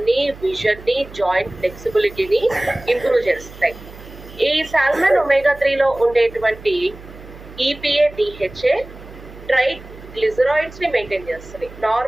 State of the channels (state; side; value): noise; right; hum, 17 dB below the sound